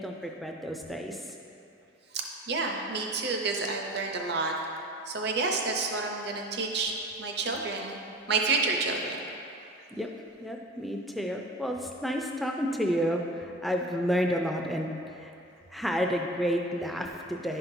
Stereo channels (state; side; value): normal; both; correlation 0.38